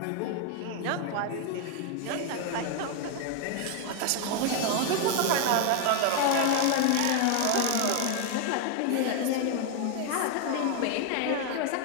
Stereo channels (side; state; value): both; different; correlation 0.01